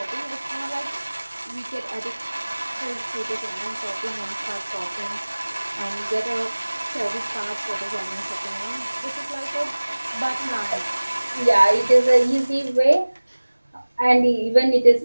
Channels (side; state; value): both; inverted; correlation -1.00